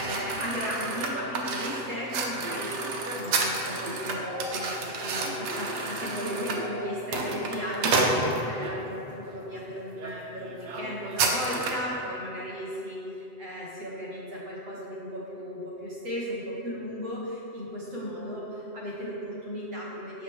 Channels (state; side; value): late; left; 7.9 ms